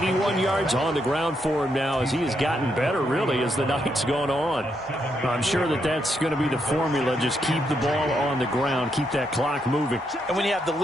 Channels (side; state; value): both; normal; correlation 0.79